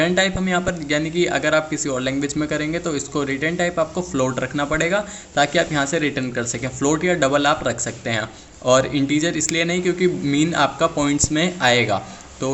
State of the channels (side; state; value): both; identical; correlation 1.00